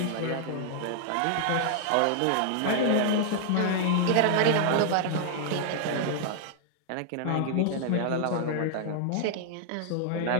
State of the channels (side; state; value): both; different; correlation 0.00